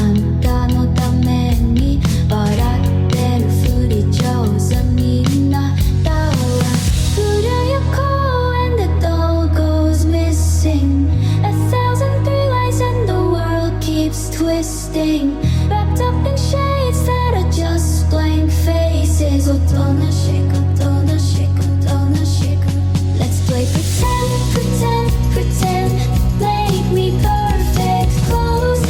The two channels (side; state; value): both; identical; correlation 1.00